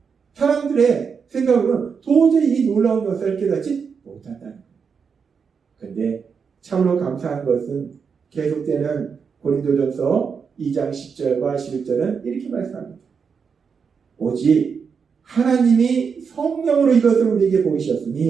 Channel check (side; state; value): left; quieter; 6.0 dB